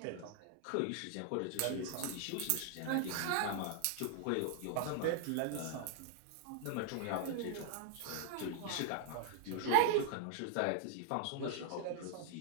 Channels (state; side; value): different; both; correlation -0.01